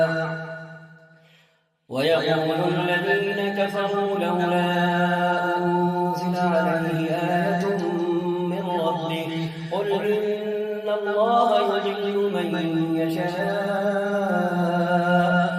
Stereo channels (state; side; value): identical; both; correlation 1.00